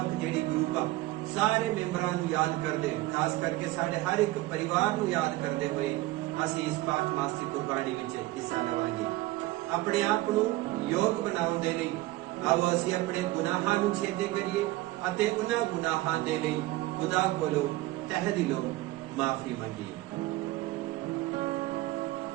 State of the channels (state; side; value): quieter; left; 18.3 dB